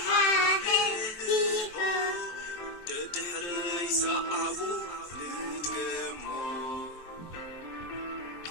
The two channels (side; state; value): right; late; 23 ms